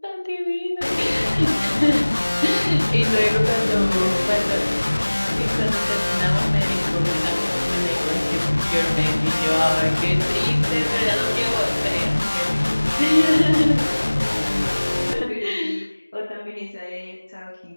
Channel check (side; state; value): both; inverted; correlation -1.00